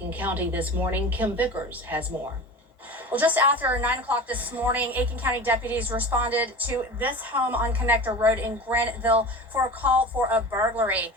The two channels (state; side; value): normal; both; correlation 0.33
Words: County this morning. Kim Vickers has more. Well, just after 9 o'clock this morning, Aiken County deputies responded to this home on Connector Road in Graniteville for a call for a burglary.